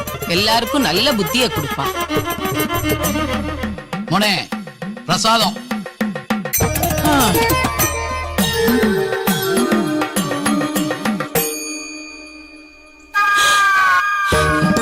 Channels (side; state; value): both; identical; correlation 1.00